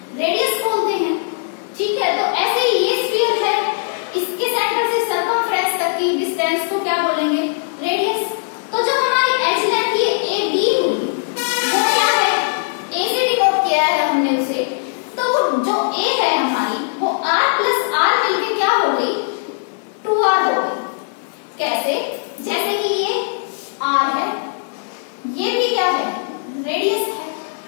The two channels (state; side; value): silent; right; 57 dB below the other